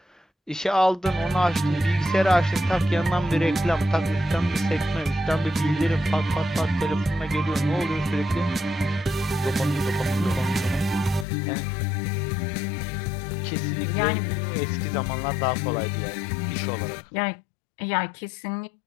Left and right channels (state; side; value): drops out; right; at 11.2 s